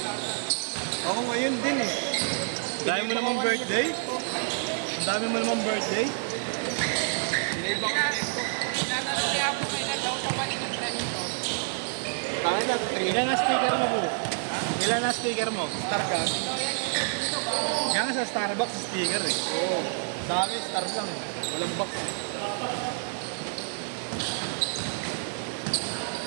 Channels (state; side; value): silent; left; digital silence